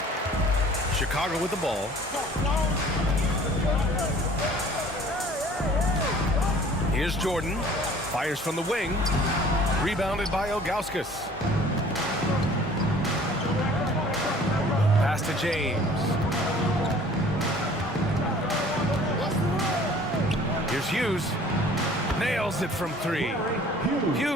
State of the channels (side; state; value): both; normal; correlation 0.51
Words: Chicago with the ball. Here's Jordan. Fires from the wing. Rebounded by Ilgauskas. Pass to James. Here's Hughes. Nails it from 3.